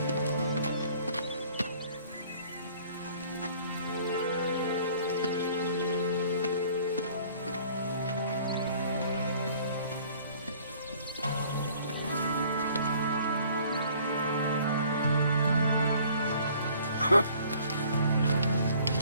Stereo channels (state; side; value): inverted; both; correlation -0.55